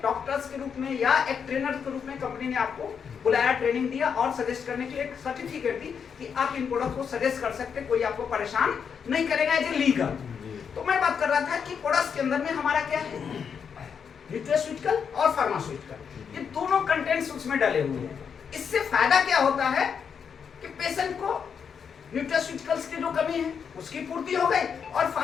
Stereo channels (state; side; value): quieter; right; 6.8 dB